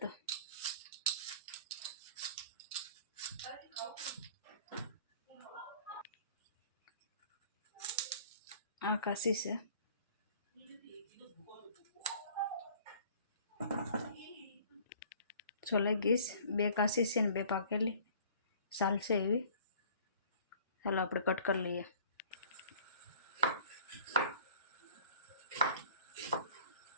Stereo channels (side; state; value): both; inverted; correlation -0.50